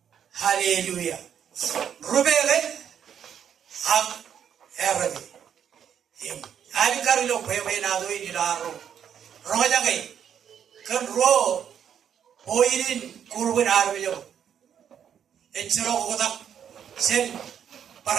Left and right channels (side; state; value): left; quieter; 8.7 dB